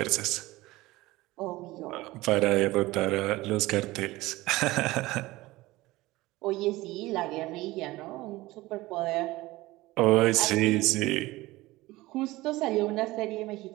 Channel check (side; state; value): left; quieter; 19.2 dB